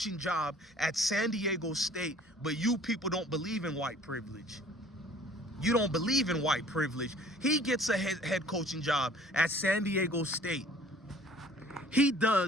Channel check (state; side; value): normal; both; correlation 0.52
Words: job at San Diego State, but you people don't believe in white privilege. You don't believe in white privilege. He gets a head coaching job at San Diego State. He